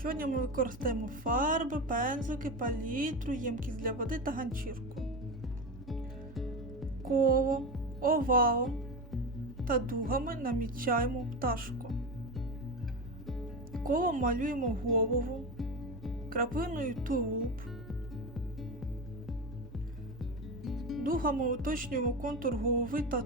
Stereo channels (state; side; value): normal; both; correlation 0.21